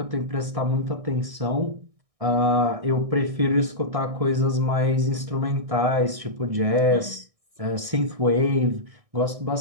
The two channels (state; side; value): late; left; 1.6 ms